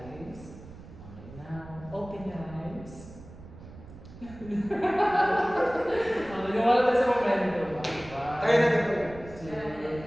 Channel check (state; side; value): noise; right; rumble, 17 dB below the sound